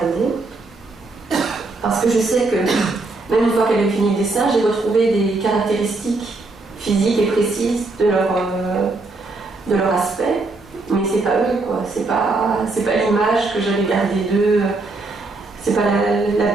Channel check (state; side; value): quieter; left; 3.3 dB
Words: Parce que je sais que, même une fois qu'elle a fini le dessin, j'ai retrouvé des caractéristiques physiques et précises de leur aspect. Mais c'est pas eux, quoi. C'est pas l'image que j'avais gardée d'eux. C'est pas la